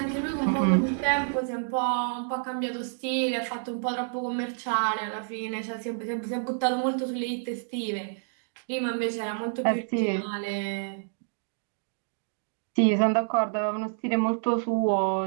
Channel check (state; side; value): silent; left; digital silence